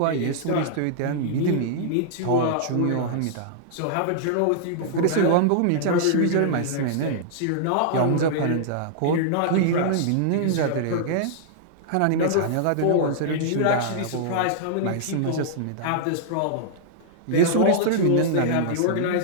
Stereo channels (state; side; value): different; both; correlation -0.01